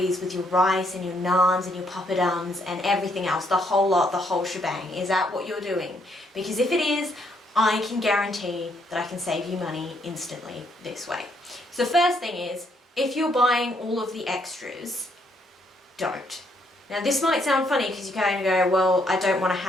with your rice and your naans and your papadums and everything else, the whole lot, the whole shebang? Is that what you're doing? Because if it is, I can guarantee that I can save you money instantly this way. So the first thing is, if you're buying all of the extras, don't. Now this might sound funny because you kind of go, well, I don't want to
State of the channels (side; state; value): both; normal; correlation 0.72